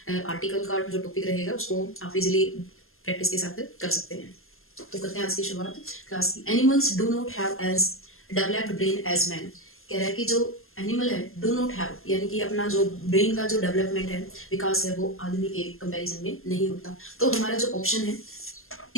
आर्टिकल का जो टॉपिक रहेगा उसको आप इजिली प्रैक्टिस के साथ कर सकते हैं। तो करते हैं आज की शुरुआत क्लास की। Animals do not have as developed brain as man. कह रहा है कि जो एनिमल है डू नॉट हैव, यानी कि अपना जो ब्रेन का जो डेवलपमेंट है, विकास है, वो आदमी के कंपैरिजन में नहीं होता। तो हमारा जो ऑप्शन है,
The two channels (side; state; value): right; late; 0.61 ms